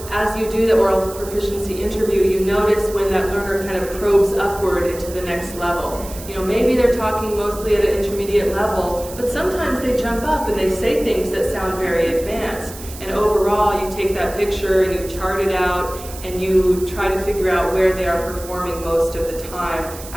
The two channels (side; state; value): right; noise; hiss, 15 dB below the sound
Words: as you do the oral proficiency interview, you notice when that learner kind of probes upward into the next level. Maybe they're talking mostly at an intermediate level, but sometimes they jump up and they say things that sound very advanced. And overall, you take that picture and you chart it out and you try to figure out where they are performing most of the time